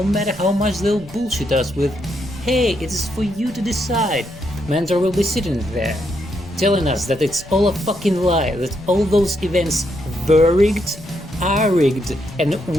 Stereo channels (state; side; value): noise; left; rumble, 20 dB below the sound